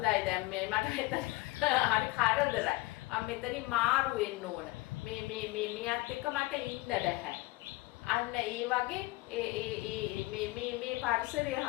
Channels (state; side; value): quieter; right; 21.0 dB